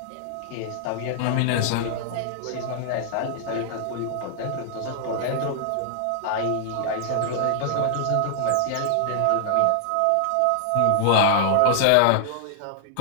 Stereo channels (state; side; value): different; both; correlation -0.01